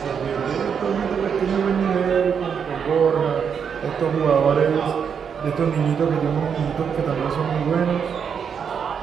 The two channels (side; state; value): left; quieter; 7.0 dB